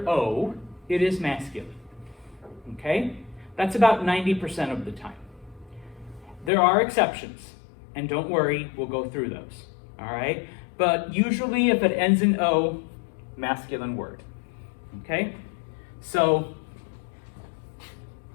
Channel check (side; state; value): right; drops out; at 6.5 s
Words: O, it is masculine. Okay? That's about 90% of the time. There are exceptions, and don't worry, we'll go through those. All right? But usually if it ends in O, masculine word. Okay? So,